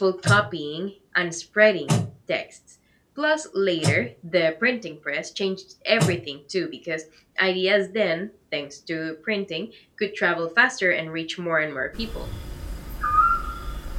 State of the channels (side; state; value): both; identical; correlation 1.00